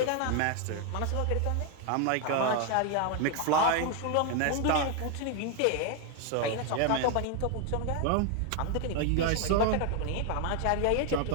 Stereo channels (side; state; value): both; different; correlation 0.01